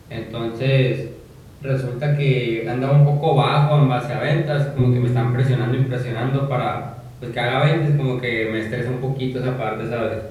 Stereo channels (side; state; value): both; identical; correlation 1.00